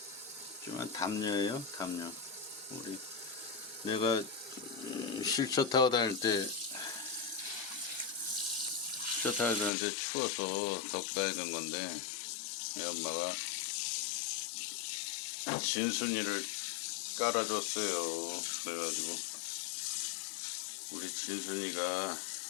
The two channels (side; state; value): right; drops out; at 9.7 s